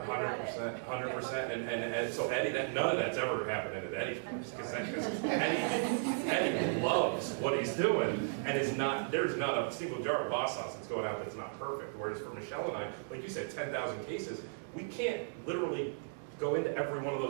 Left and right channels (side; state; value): left; silent; digital silence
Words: And so Eddie, none of that's ever happened at Eddie, because Eddie loves what he's doing, and there's not a single jar of boss sauce that's going out that's not perfect. Whereas for Michelle and I, like you said, 10,000 cases, we can't literally go into every one of